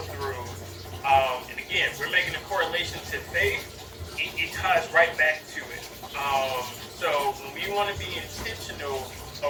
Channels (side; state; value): both; identical; correlation 1.00